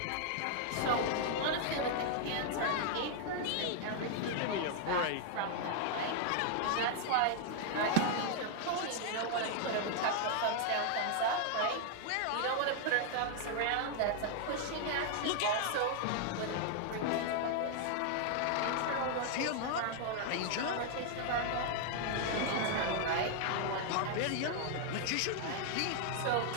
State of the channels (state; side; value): different; both; correlation 0.00